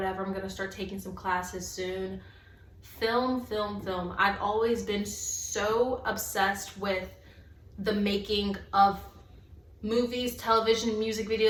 I'm gonna start taking some classes soon. Film. I've always been so obsessed with the making of movies, television, music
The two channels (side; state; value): both; identical; correlation 1.00